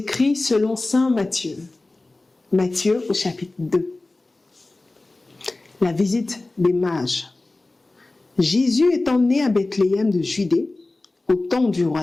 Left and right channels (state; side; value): quieter; right; 3.0 dB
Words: selon saint Matthieu. Matthieu au chapitre 2. La visite des mages. Jésus étant né à Bethléem de Judée, au temps du